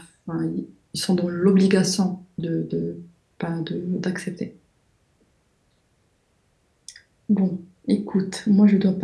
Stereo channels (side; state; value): both; identical; correlation 1.00